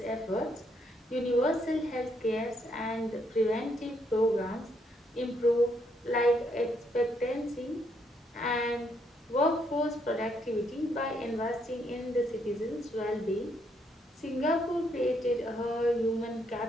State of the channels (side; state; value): both; normal; correlation 0.74